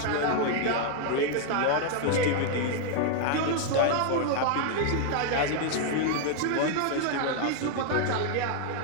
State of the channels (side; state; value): both; different; correlation 0.00